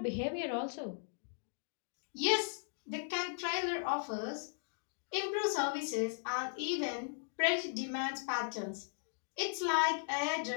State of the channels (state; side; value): silent; right; digital silence